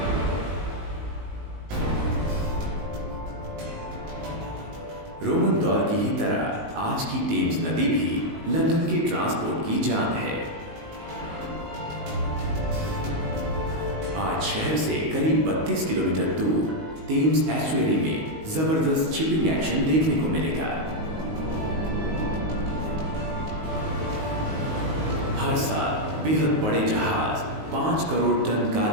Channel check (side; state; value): left; late; 19 ms